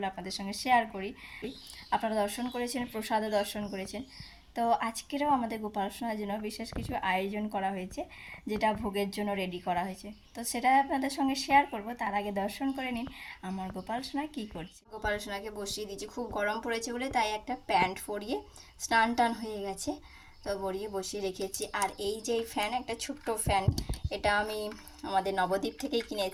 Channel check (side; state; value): both; identical; correlation 1.00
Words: আপনাদের সঙ্গে শেয়ার করি। আপনারা দর্শন করেছেন, প্রসাদও দর্শন করেছেন। তো আজকেরও আমাদের গোপাল সোনার জন্য বিশেষ কিছু আয়োজন করা হয়েছে, যেটা ভোগের জন্য রেডি করা হয়েছে। তো সেটা আপনাদের সঙ্গে শেয়ার করব। তার আগে দর্শন করে নিন আমার গোপাল সোনা কী করছে। গোপাল সোনাকে বসিয়ে দিয়েছি, খুব গরম পড়েছে বলে, তাই একটা প্যান্ট পরিয়ে স্নান টান হয়ে গেছে, তো বড়িয়ে বসিয়ে রেখেছি। আর এই যে ফ্যান, একটা ছোট্ট ফ্যান, এটা আমি আমাদের নবদ্বীপ থেকেই